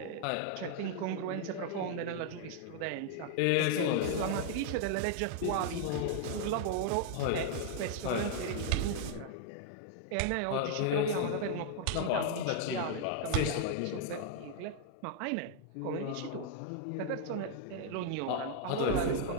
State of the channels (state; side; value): different; both; correlation 0.00